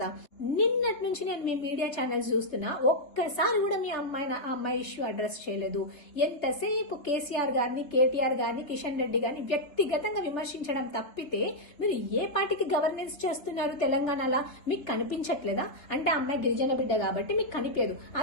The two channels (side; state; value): right; late; 3.8 ms